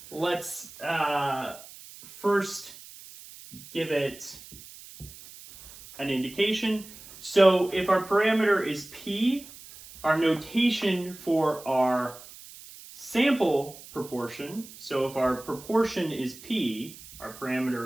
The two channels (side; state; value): right; noise; hiss, 18 dB below the sound